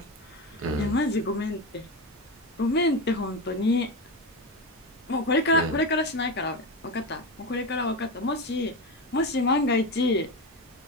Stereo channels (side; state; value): both; normal; correlation 0.18